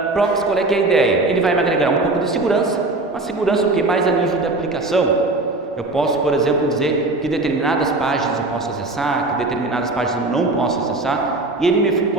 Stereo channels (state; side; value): quieter; left; 3.0 dB